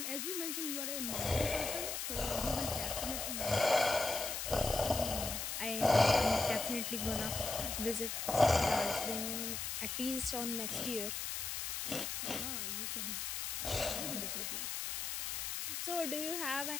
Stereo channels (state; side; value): noise; left; hiss, 3 dB below the sound